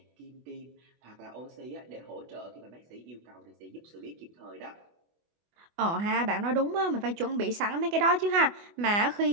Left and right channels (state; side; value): late; left; 24 ms